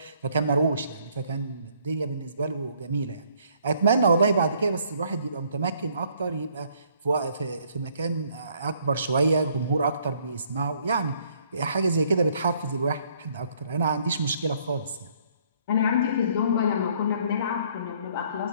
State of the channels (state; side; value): inverted; both; correlation -0.64